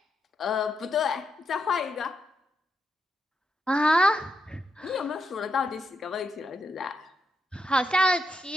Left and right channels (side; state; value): both; normal; correlation 0.82